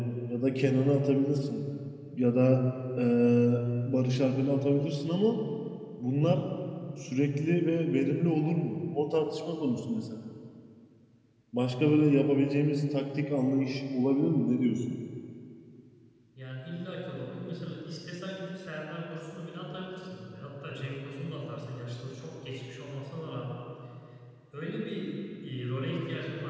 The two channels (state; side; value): identical; both; correlation 1.00